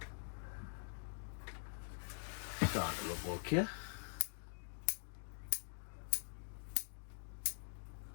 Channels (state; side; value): silent; right; digital silence